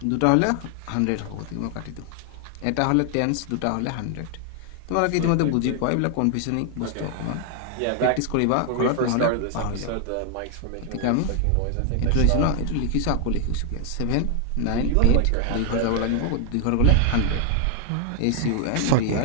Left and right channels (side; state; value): both; different; correlation 0.00